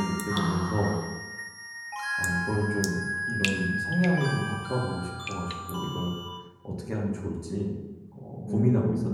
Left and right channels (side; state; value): both; identical; correlation 1.00